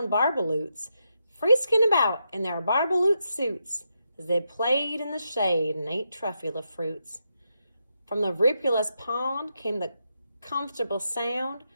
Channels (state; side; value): inverted; both; correlation -0.83